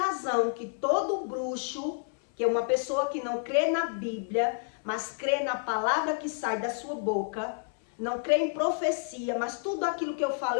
que todo bruxo, que é uma pessoa que não crê na Bíblia, mas crê na palavra que sai da sua boca, não crê em profecia, mas tudo aquilo que eu falo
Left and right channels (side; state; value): right; silent; 58 dB below the other